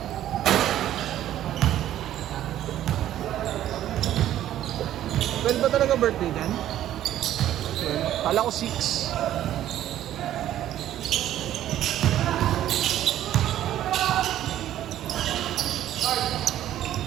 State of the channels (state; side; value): quieter; left; 12.3 dB